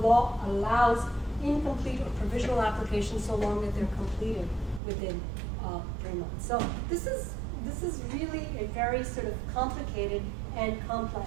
allows incomplete or provisional applications so long that they're completed within 3 months. So this is very sort of complicated and complex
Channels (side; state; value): left; drops out; at 4.8 s